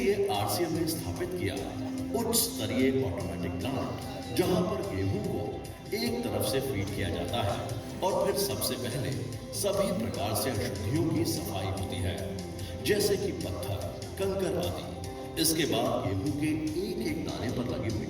आरसीएम ने स्थापित किया उच्च स्तरीय ऑटोमेटिक प्लांट, जहां पर गेहूं को एक तरफ से फीड किया जाता है और फिर सबसे पहले सभी प्रकार से अशुद्धियों की सफाई होती है, जैसे कि पत्थर, कंकर आदि। इसके बाद गेहूं के एक एक दाने पर लगी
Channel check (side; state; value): both; identical; correlation 1.00